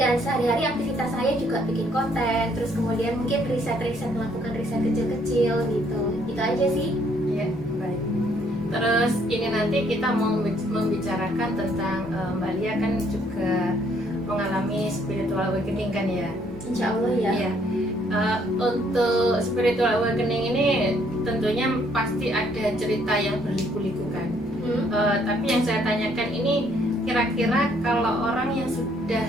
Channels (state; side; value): normal; both; correlation 0.67